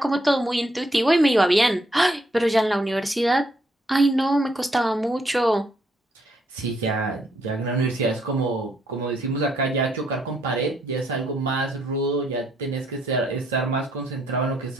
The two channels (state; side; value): normal; both; correlation 0.72